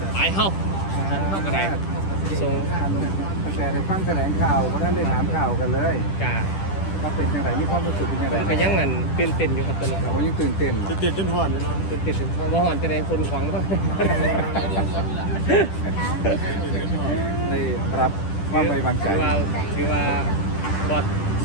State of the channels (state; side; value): late; right; 10 ms